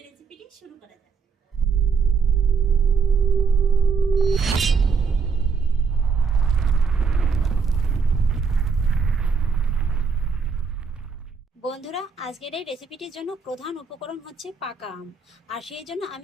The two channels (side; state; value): left; quieter; 5.4 dB